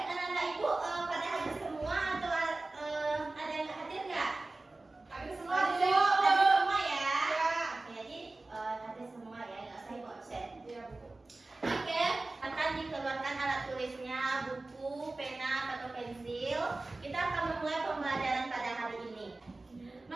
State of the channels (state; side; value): quieter; left; 3.1 dB